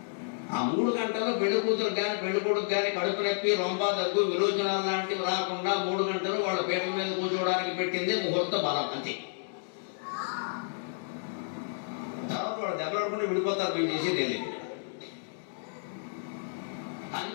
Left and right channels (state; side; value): silent; right; digital silence